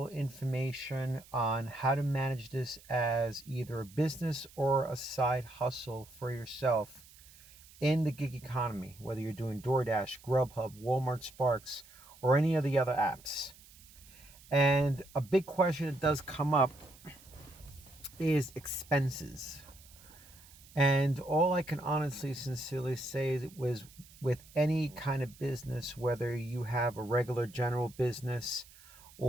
information on how to manage this as either a business or a side hustle for yourself in the gig economy, whether you're doing DoorDash, Grubhub, Walmart Sparks, or any of the other apps. And a big question that does come up is expenses. And all I can honestly, sincerely say is it was with any kind of business, whether you have a regular general business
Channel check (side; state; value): right; noise; hiss, 23 dB below the sound